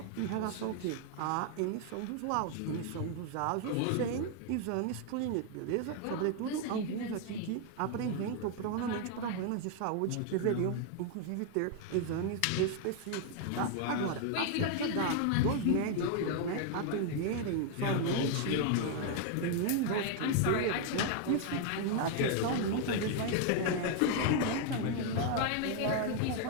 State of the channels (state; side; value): different; both; correlation 0.00